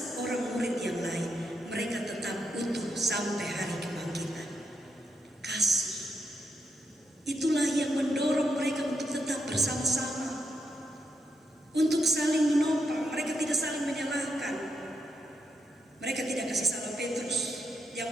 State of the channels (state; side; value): normal; both; correlation 0.82